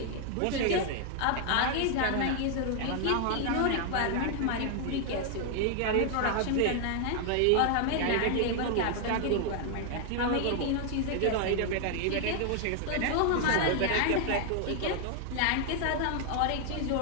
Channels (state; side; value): different; both; correlation 0.00